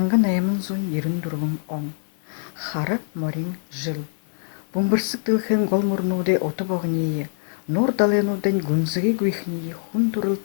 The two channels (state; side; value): silent; right; 63 dB below the other